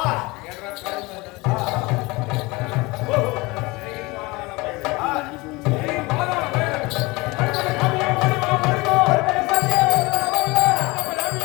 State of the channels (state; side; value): quieter; right; 23.5 dB